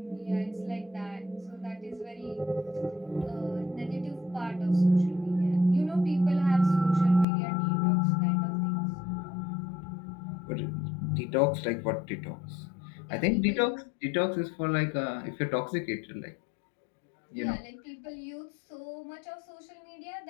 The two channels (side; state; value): right; drops out; at 7.2 s